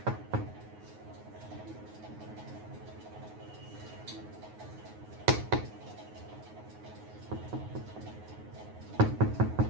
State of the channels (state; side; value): late; left; 9.5 ms